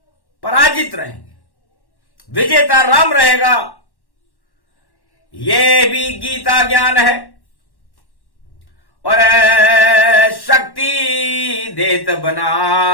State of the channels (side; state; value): right; late; 1.1 ms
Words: पराजित रहेंगे, विजेता राम रहेगा। ये भी गीता ज्ञान है और शक्ति देत